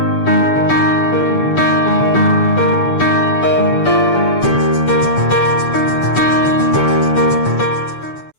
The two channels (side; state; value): right; late; 6.9 ms